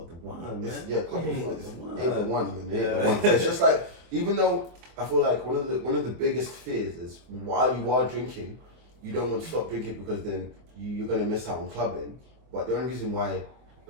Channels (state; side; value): late; left; 24 ms